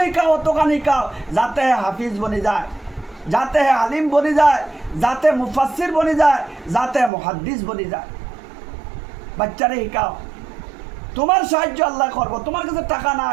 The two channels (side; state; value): left; drops out; at 7.1 s